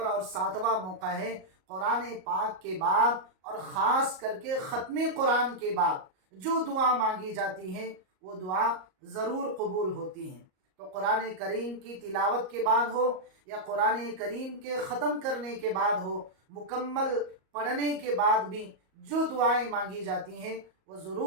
اور 7واں موقع ہے قرآن پاک کے بعد اور خاص کر کے ختم قرآن کے بعد جو دعا مانگی جاتی ہے وہ دعا ضرور قبول ہوتی ہیں۔ تو قرآن کریم کی تلاوت کے بعد ہو یا قرآن کریم کے ختم کرنے کے بعد ہو، مکمل پڑھنے کے بعد بھی جو دعائیں مانگی جاتی ہیں وہ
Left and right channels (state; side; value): late; left; 38 ms